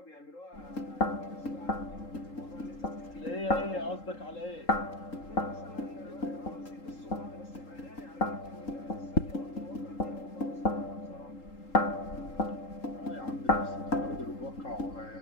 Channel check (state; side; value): late; right; 3.8 ms